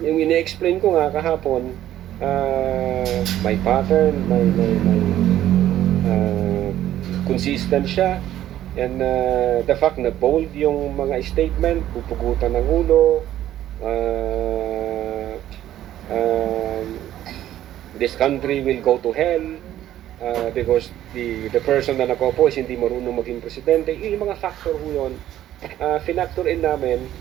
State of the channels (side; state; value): left; quieter; 12.5 dB